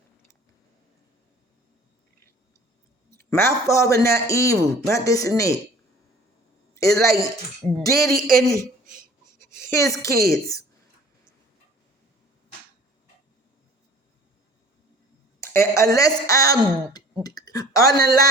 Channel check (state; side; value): normal; both; correlation 0.49